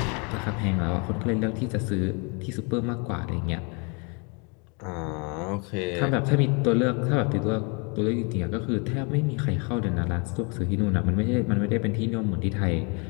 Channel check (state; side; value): quieter; right; 33.3 dB